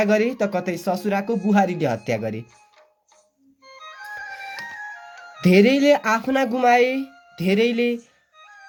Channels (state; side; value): identical; both; correlation 1.00